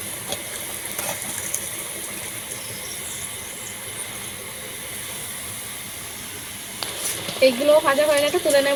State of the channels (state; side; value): noise; right; rumble, 28 dB below the sound